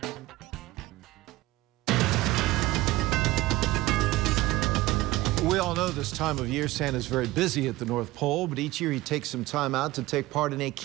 We all know this time of year Santa's very busy at the North Pole, but each year he takes some time out to take part in a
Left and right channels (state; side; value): quieter; left; 18.0 dB